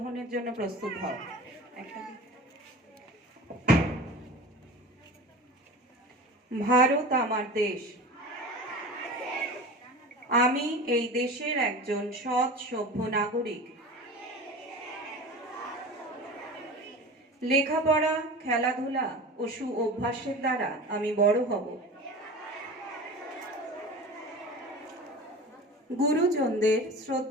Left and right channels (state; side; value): normal; both; correlation 0.34